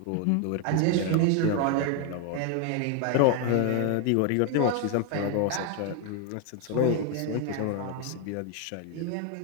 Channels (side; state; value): both; different; correlation 0.01